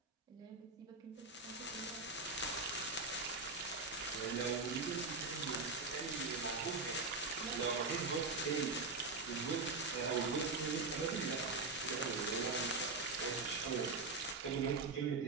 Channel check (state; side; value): quieter; left; 3.8 dB